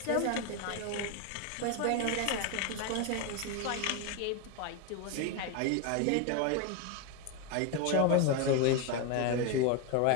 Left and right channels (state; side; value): different; both; correlation 0.02